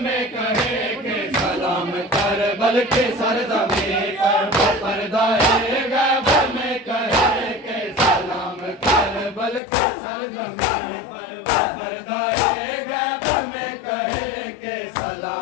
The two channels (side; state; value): right; drops out; at 9.6 s